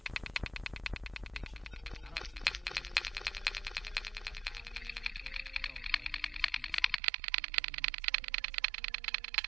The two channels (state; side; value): drops out; left; at 7.0 s